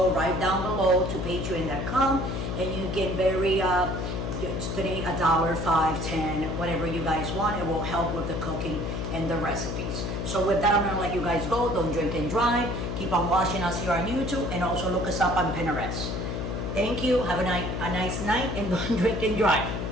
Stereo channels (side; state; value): left; noise; hum, 3 dB below the sound